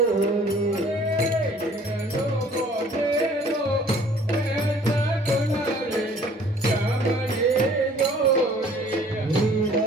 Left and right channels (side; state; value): both; normal; correlation 0.54